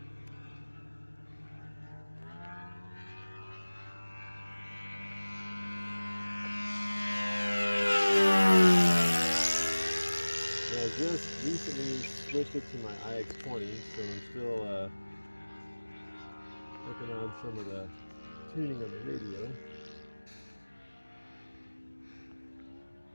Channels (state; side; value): inverted; both; correlation -1.00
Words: I just recently switched it to my iX20, so I'm still working on some of the tuning of the radio.